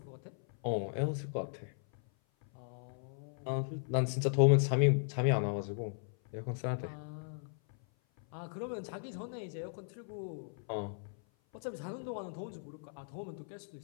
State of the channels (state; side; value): silent; right; 53 dB below the other